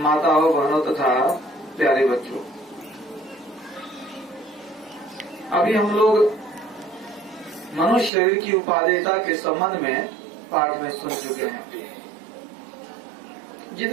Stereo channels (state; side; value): drops out; left; at 8.1 s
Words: बहनों तथा प्यारे बच्चों, अभी हम लोग मनुष्य शरीर की उपादेयता के संबंध में पाठ में सुन चुके हैं।